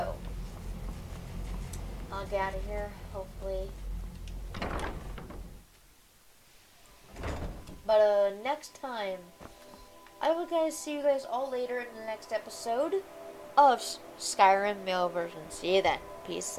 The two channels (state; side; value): identical; both; correlation 1.00